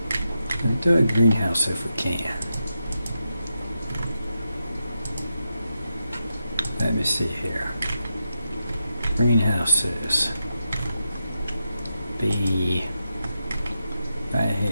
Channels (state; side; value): inverted; both; correlation -0.87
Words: Let's do a greenhouse if we can. Let me see here. Greenhouses. Be right